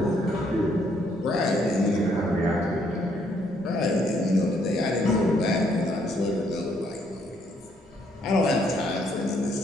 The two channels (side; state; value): both; normal; correlation 0.70